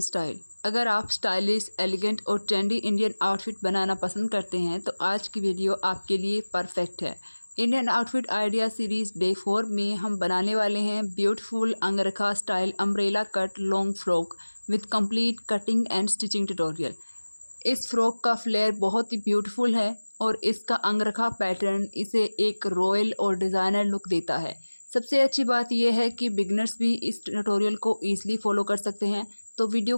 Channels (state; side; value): inverted; both; correlation -1.00